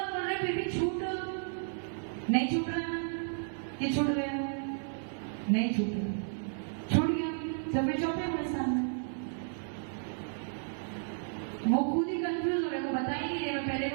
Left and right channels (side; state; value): left; silent; digital silence